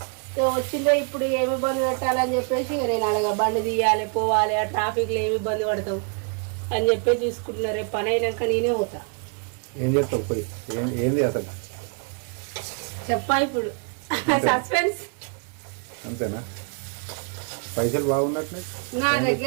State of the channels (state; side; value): quieter; left; 38.7 dB